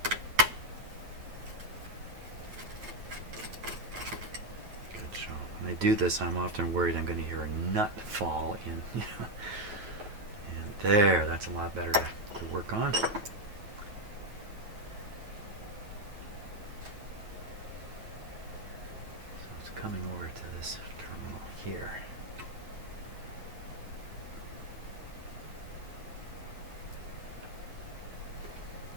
do this, I'm often worried I'm going to hear a nut fall in. And there, that's a lot better to work on. So it's coming over to this terminal here.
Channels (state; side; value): late; left; 9.3 ms